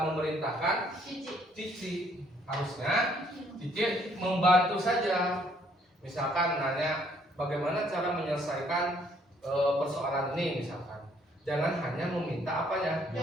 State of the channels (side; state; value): both; normal; correlation 0.65